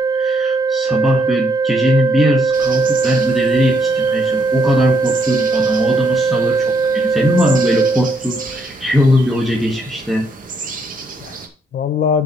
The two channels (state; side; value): normal; both; correlation 0.73